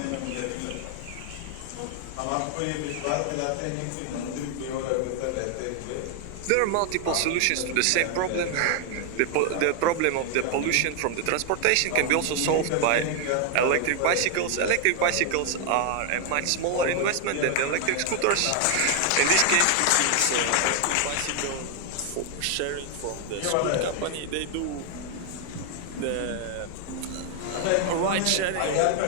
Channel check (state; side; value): different; both; correlation 0.00